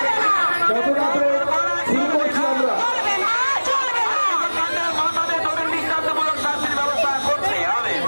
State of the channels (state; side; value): inverted; both; correlation -1.00